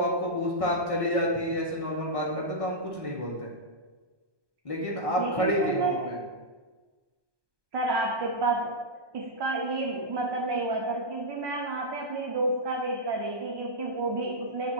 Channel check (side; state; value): left; late; 1.2 ms